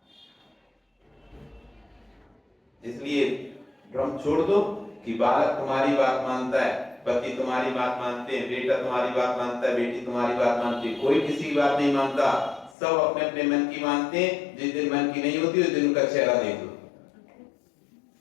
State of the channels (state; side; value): drops out; right; at 12.8 s